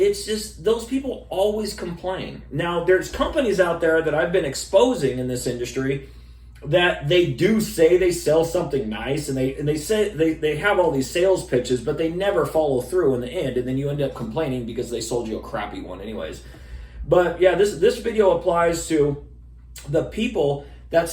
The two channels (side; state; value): both; identical; correlation 1.00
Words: just those people always complain. Now, there's companies out there that I've been exposing in this industry that they do say they sell something nice, and they say they have all these sales pitches, but they never follow through in the end, and then you end up complaining because they sold you a crappy one anyways. But yeah, this video applies to the people that